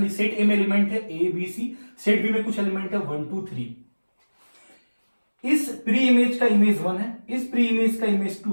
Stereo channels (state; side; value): inverted; both; correlation -1.00